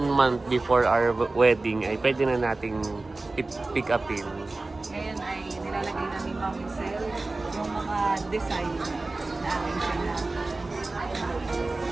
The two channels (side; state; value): left; quieter; 3.2 dB